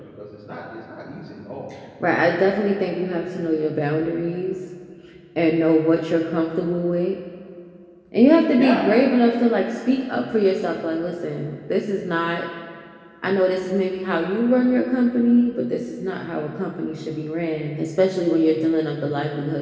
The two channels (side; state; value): both; identical; correlation 1.00